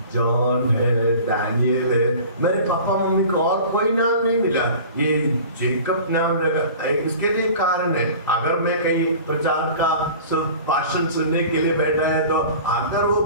जॉन है, दानियल है। मेरे पापा मम्मी को और कोई नाम नहीं मिला, ये जेकब नाम लगा। इसके लिए कारण है, अगर मैं कहीं प्रचार का भाषण सुनने के लिए बैठा है, तो अगर वो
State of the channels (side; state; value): both; inverted; correlation -0.41